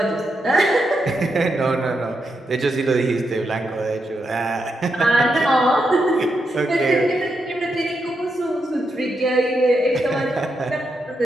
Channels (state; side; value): normal; both; correlation 0.83